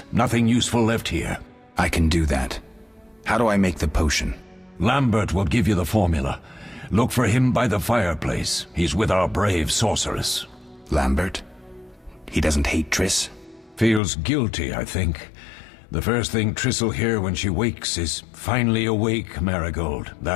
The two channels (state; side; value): drops out; right; at 14.0 s